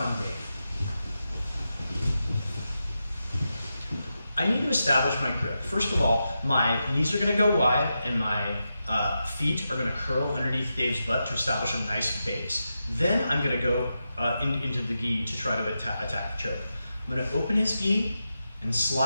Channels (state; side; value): inverted; both; correlation -0.88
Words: Dave, I need to establish my grip. First of all, my knees are going to go wide and my feet are going to curl underneath Dave's butt to establish a nice base. Then I'm going to go into the gi to try to attack the choke. I'm going to open his gi and